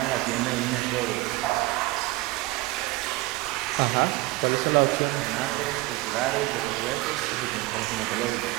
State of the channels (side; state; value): left; quieter; 20.2 dB